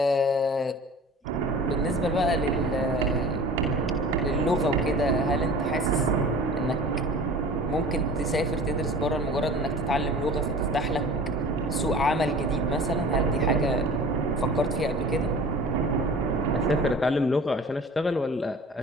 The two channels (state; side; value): normal; both; correlation 0.41